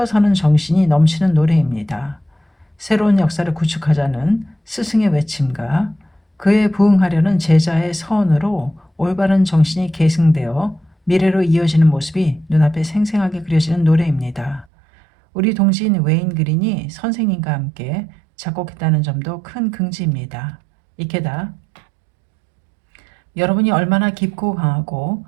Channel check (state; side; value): drops out; left; at 14.7 s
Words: 서는 정신이 넘치는 노래입니다. 새로운 역사를 구축하자는 스승의 외침과 그에 부응하려는 제자의 서원으로 올바른 정신이 계승되어 미래로 이어지는 모습이 눈앞에 생생하게 그려지는 노래입니다. 우리 동지인 웨인 그린이 선생님과 함께 작곡했다는 점도 큰 긍지입니다. 이케다 여러분이 얼마나 깊고 강하고